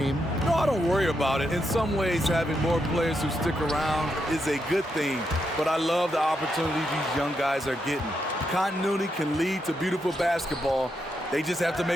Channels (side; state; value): both; normal; correlation 0.82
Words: No, I don't worry about it. In some ways, having more players who stick around is a good thing, but I love the opportunity these young guys are getting. Continuity can lead to beautiful basketball. They just have to